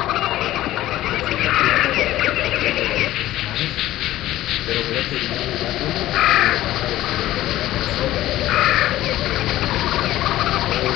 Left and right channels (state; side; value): quieter; right; 15.0 dB